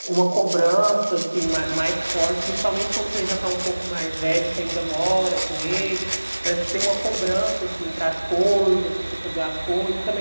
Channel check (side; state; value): both; inverted; correlation -1.00